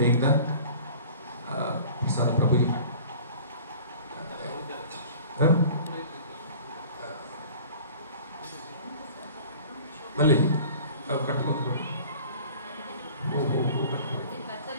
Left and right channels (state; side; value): inverted; both; correlation -0.44